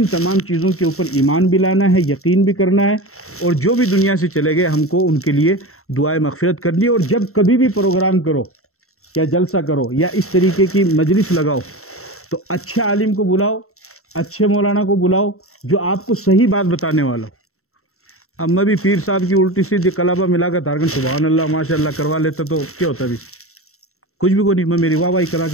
تمام چیزوں کے اوپر ایمان بھی لانا ہے, یقین بھی کرنا ہے, اور جو بھی دنیا سے چلے گئے ہم کو ان کے لیے دعائے مغفرت کرنی ہے. اور جب کبھی بھی پروگرام کرو یا جلسہ کرو یا اس طریقے کی مجلس لگاؤ تو اچھے عالم کو بلاؤ, اچھے مولانا کو بلاؤ جو آپ کو صحیح بات بتانے والا ہو. اب میں بھی پیر صاحب کی الٹی سیدھی کلابہ ملا کر دھارکن سبحان اللہ ماشاء اللہ کروا لیتا تو کیا ہوتا بھی؟ کچھ بھی کوئی نہیں، میں میری واہ واہی کرا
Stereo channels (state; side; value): late; right; 0.63 ms